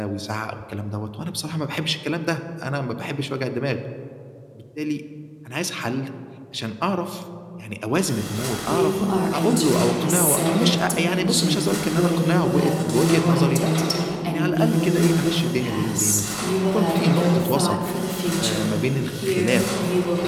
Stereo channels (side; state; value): both; identical; correlation 1.00